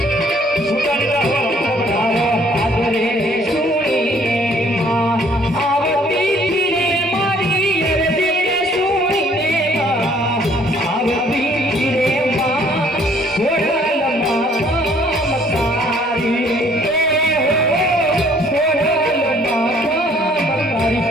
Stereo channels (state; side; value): normal; both; correlation 0.60